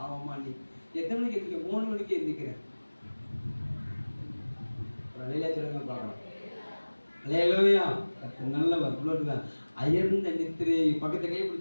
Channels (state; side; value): inverted; both; correlation -1.00